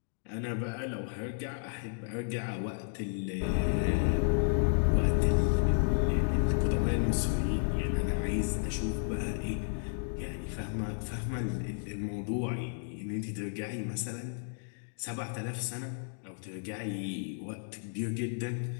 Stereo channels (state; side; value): silent; right; digital silence